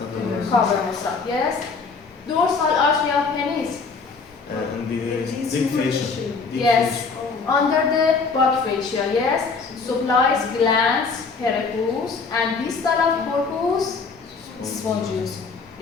cavernosum. Yes. Dorsal artery of penis. And the deep fascia. Yes. Under the buck fascia. Yes. Supplies glands, pericarpus, and distal of corpus spongiosum.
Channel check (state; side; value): quieter; right; 4.7 dB